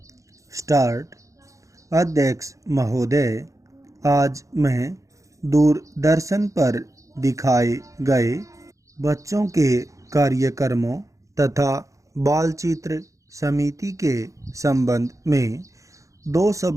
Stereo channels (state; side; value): late; left; 0.15 ms